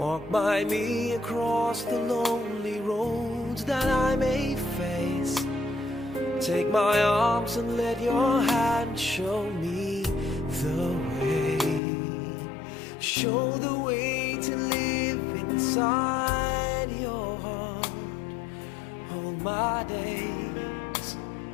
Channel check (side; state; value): right; drops out; at 11.8 s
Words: by me across the lonely roads that I may face. Take my arms and let your hand show me the way. Show the way to live inside your heart. All my days,